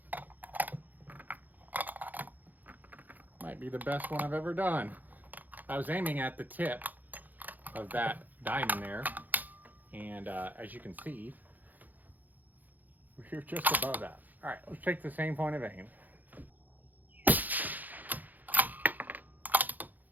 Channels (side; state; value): left; late; 0.083 ms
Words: Might be the best one I've ever done. I was aiming at the tip of that diamond there, and as you can see, we're just above that. All right, let's take the same point of aim.